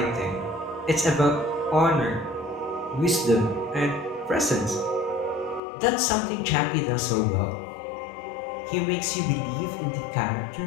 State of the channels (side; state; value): right; drops out; at 5.6 s